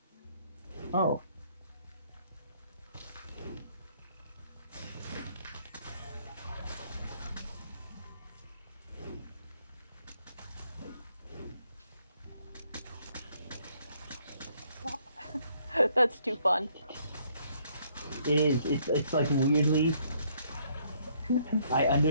Oh. That's too fun. It is. It's like weirdly. I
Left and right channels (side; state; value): both; inverted; correlation -0.67